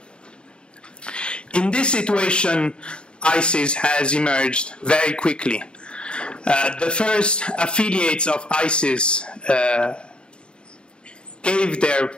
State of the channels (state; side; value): late; right; 0.052 ms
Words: In this situation, ISIS has emerged very quickly. The first affiliates of ISIS gave their